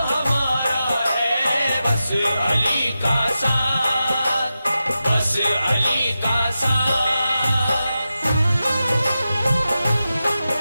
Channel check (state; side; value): inverted; both; correlation -0.91